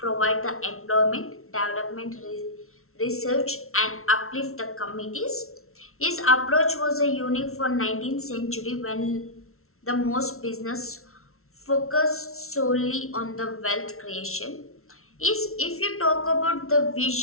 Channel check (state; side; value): late; right; 0.62 ms